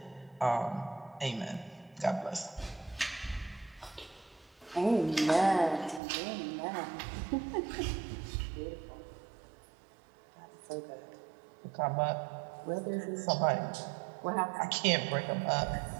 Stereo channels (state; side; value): drops out; left; at 6.0 s